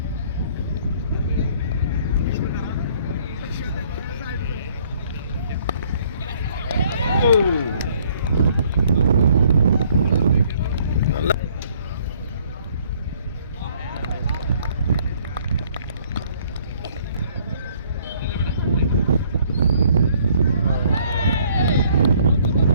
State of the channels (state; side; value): inverted; both; correlation -0.61